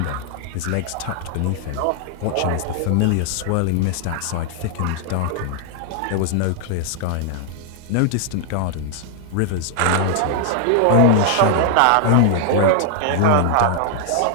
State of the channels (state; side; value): different; both; correlation 0.00